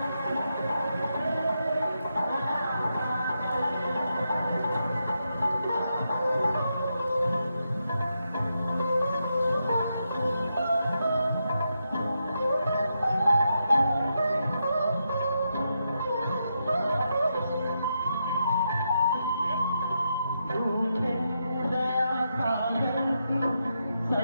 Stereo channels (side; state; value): both; inverted; correlation -0.83